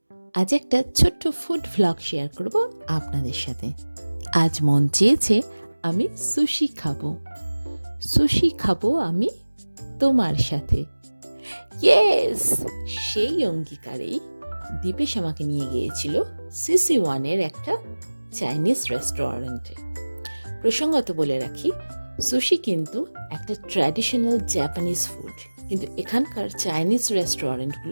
আজ একটা ছোট্ট ফুড ভ্লগ শেয়ার করব আপনাদের সাথে। আজ মন চেয়েছে আমি সুশি খাবো। সুশি খাবো আমি তোমার সাথে। ইয়েস! সেই অঙ্গীকারেই দীপেশ আমাকে নিয়ে গিয়েছিল CC1-এর একটা চাইনিজ রেস্টুরেন্টে। প্রসঙ্গত বলে রাখি, সুশি কিন্তু একটা ট্র্যাডিশনাল জাপানিজ ফুড, কিন্তু এখানকার চাইনিজ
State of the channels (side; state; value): both; inverted; correlation -1.00